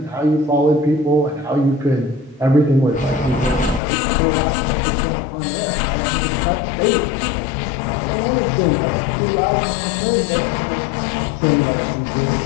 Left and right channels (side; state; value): right; drops out; at 3.8 s